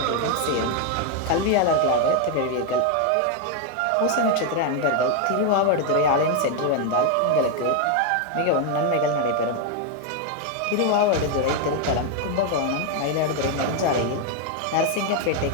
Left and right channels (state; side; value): different; both; correlation 0.01